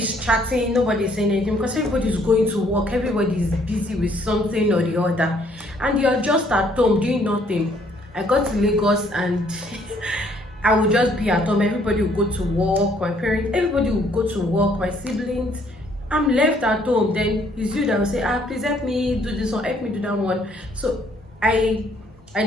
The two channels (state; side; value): normal; both; correlation 0.64